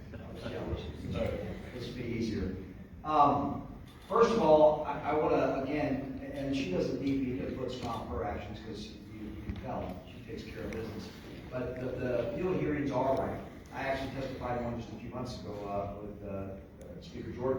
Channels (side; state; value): both; identical; correlation 1.00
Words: This will be easier. First of all, I want to, again, and she doesn't need me to put stop her actions because you can tell she takes care of business. But the field hearings are right. I actually testified one just a few months ago with Speaker